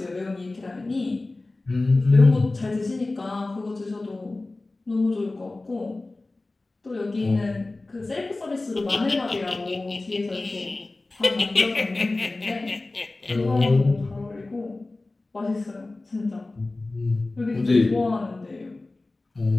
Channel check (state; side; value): quieter; right; 3.1 dB